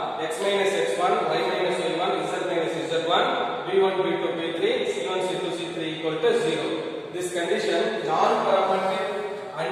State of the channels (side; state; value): both; identical; correlation 1.00